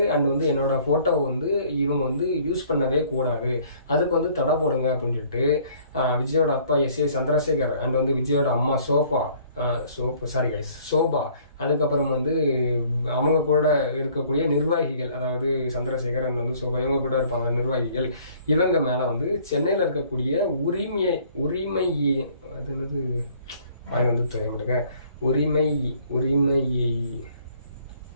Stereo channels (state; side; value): inverted; both; correlation -0.58